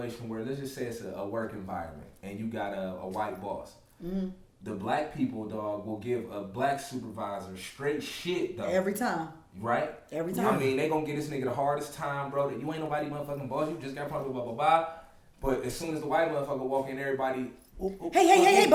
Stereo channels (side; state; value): both; identical; correlation 1.00